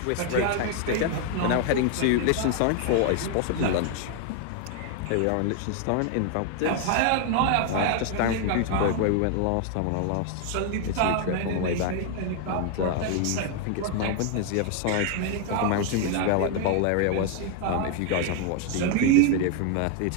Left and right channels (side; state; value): both; different; correlation 0.00